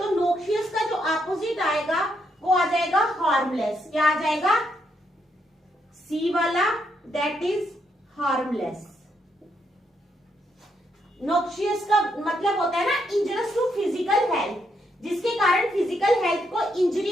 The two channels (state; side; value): normal; both; correlation 0.77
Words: नोक्शियस का जो अपोजिट आएगा वो आ जाएगा हार्मलेस। क्या आ जाएगा? सी वाला, दैट इज हार्मलेस। नोक्शियस का मतलब होता है ना इंजरियस टू फिजिकल हेल्थ, जिसके कारण फिजिकल हेल्थ को